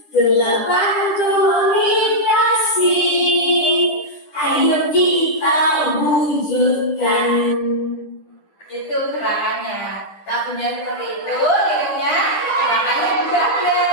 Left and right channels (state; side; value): late; right; 10 ms